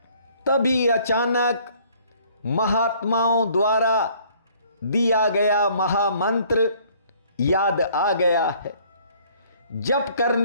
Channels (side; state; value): both; inverted; correlation -0.59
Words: तभी अचानक महात्माओं द्वारा दिया गया महामंत्र याद आ गया है। जप